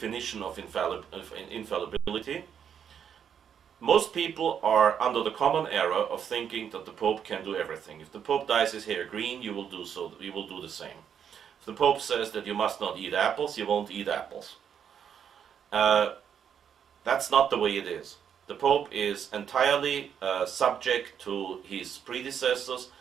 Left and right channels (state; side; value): quieter; left; 8.2 dB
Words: of infallibility, most people are under the common error of thinking that the Pope can do everything. If the Pope dyes his hair green, you will do so. You will do the same. If the Pope says that you must not eat apples, you won't eat apples. That's not the way it is. The Pope is entirely subject to his predecessors,